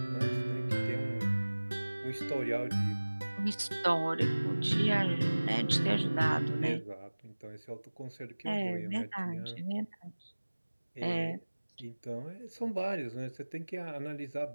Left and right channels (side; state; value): both; inverted; correlation -1.00